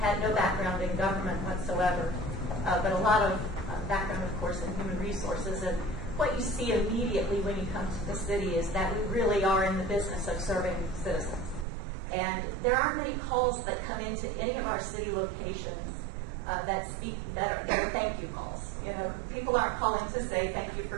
had no background in government whatsoever, but a lot of background, of course, in human resources. And what you see immediately when you come to the city is that we really are in the business of serving citizens. And there aren't many calls that come into any of our city locations that are thank you calls. People aren't calling to say thank you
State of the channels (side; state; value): left; drops out; at 11.7 s